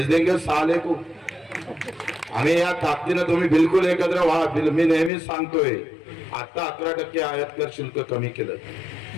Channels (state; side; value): drops out; right; at 5.1 s